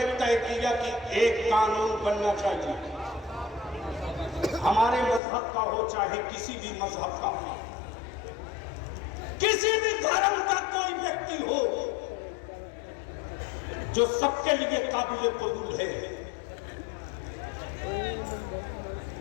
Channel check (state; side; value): drops out; right; at 5.2 s